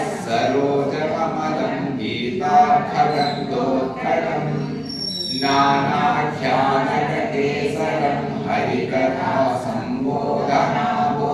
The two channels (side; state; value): both; identical; correlation 1.00